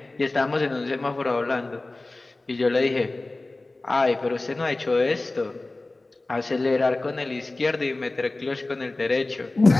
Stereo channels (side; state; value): right; quieter; 3.0 dB